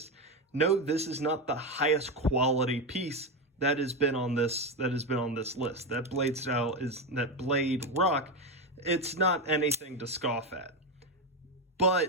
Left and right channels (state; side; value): normal; both; correlation 0.13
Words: No, this is not the highest quality piece that has been on this list. That blade style is that blade rock. It's not anything to scoff at.